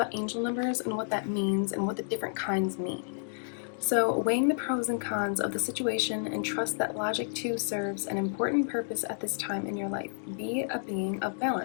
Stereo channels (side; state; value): right; silent; digital silence